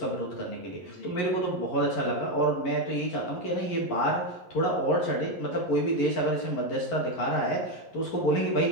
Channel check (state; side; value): late; right; 11 ms